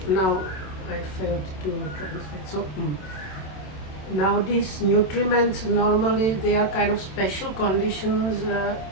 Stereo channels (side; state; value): right; late; 27 ms